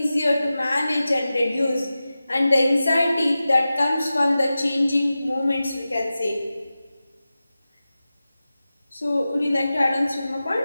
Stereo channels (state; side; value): inverted; both; correlation -0.94